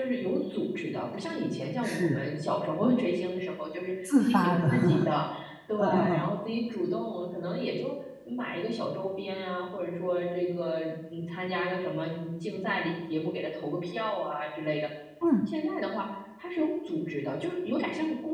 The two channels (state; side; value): identical; both; correlation 1.00